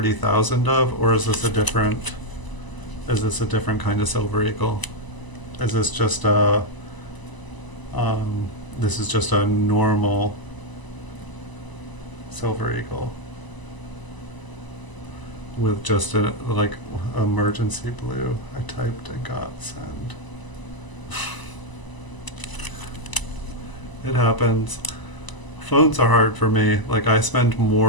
of, or is this a different kind of silver eagle? Is this just a this is just a normal silver eagle with just a like emergency blue? I typed and got send. It happens. Phones are hard for me. Like, I spend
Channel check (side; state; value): right; late; 1.0 ms